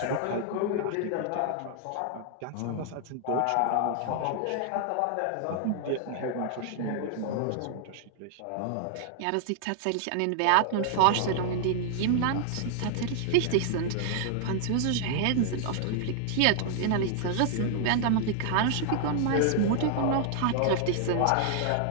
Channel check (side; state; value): both; different; correlation 0.00